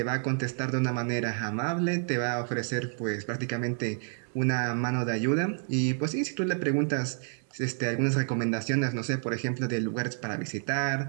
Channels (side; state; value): left; silent; 55 dB below the other